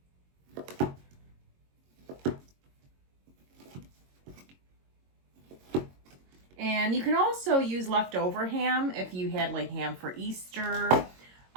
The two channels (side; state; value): left; late; 22 ms